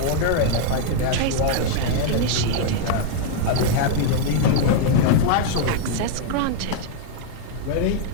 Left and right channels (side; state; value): both; different; correlation 0.00